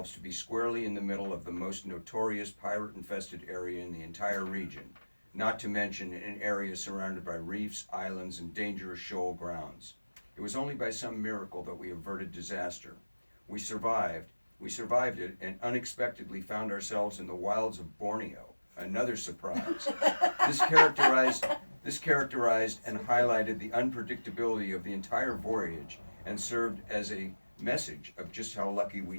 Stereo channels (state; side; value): inverted; both; correlation -1.00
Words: to be squarely in the middle of the most notorious pirate-infested area in the entire region, not to mention an area surrounded by reefs, islands, and dangerous shoal grounds. It was only by some miracle that we averted disaster. We survived it and unexpectedly found ourselves in the wilds of Borneo, another surprise. This characterized and highlighted the unpredictability of the entire voyage and served as a message of just how lucky